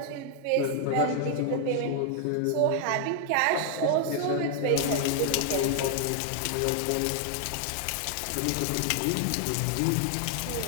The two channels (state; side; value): different; both; correlation 0.00